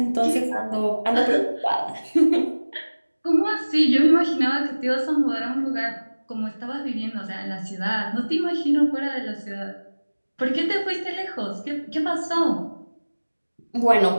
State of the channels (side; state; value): both; inverted; correlation -1.00